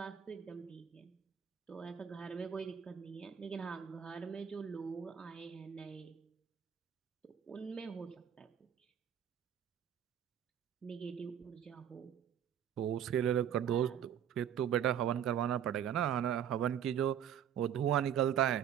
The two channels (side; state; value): left; quieter; 9.3 dB